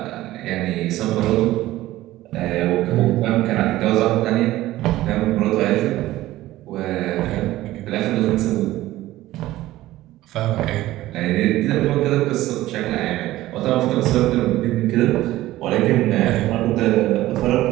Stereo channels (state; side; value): quieter; left; 16.0 dB